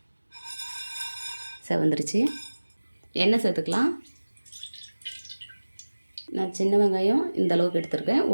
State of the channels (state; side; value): inverted; both; correlation -1.00